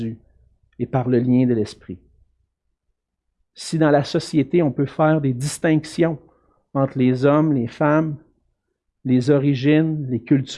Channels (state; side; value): identical; both; correlation 1.00